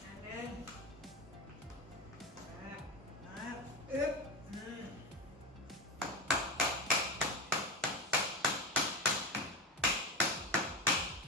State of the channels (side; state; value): both; normal; correlation 0.19